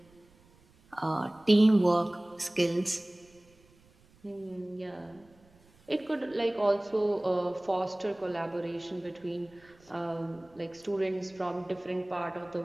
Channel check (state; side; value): noise; right; rumble, 29 dB below the sound